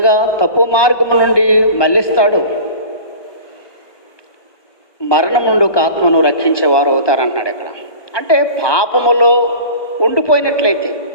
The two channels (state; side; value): late; right; 1.2 ms